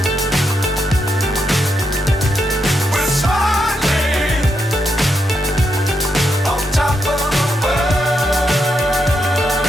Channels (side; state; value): both; normal; correlation 0.82